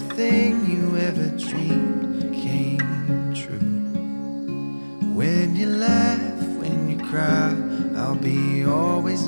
you ever dreamed came true. When you laugh, when you cry, I'll be always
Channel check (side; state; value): both; inverted; correlation -1.00